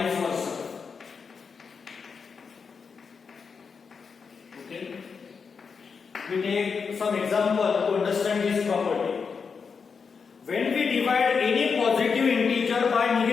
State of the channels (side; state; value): right; quieter; 5.6 dB